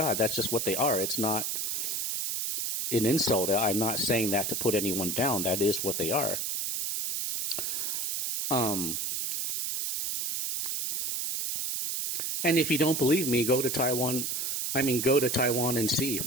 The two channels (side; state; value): right; noise; hiss, 1 dB below the sound